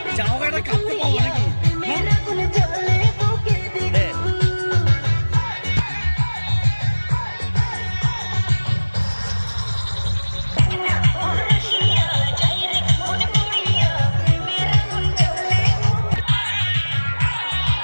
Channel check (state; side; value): inverted; both; correlation -1.00